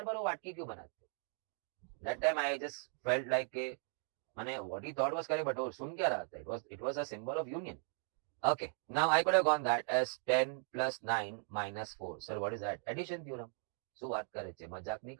बार वो वाटकी क्यों बनाते हो? That time I just felt like माने what he thought was correct, but वो सुन क्या रहा था? It was a symbol of union. Okay, now I could have gone that as 10 plus 9 minus 4. Sir, what is that? Addition theorem. So बात करे थे, मजाक नहीं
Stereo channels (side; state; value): left; silent; 52 dB below the other